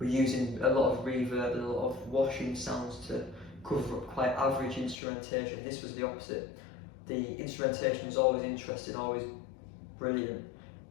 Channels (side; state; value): right; drops out; at 5.0 s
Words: using a lot of reverb and a lot of washing sounds to cover up quite average instrumentation. This was the opposite. The instrumentation was always interesting, always brilliant,